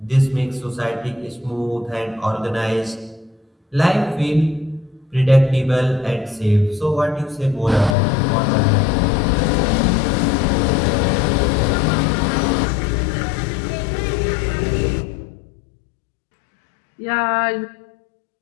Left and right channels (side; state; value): right; drops out; at 8.0 s